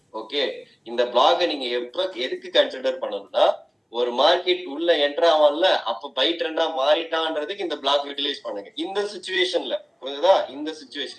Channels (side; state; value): both; identical; correlation 1.00